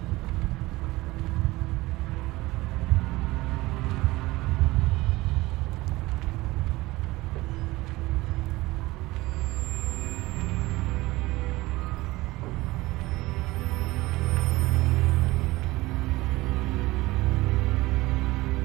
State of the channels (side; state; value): left; quieter; 19.8 dB